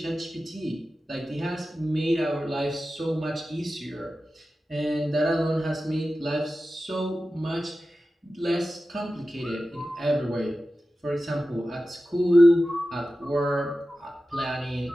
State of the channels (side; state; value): both; normal; correlation 0.94